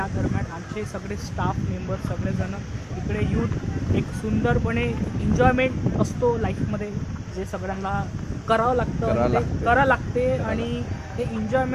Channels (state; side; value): identical; both; correlation 1.00